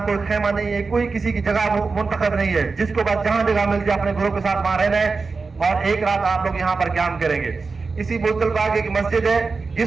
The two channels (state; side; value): quieter; left; 4.3 dB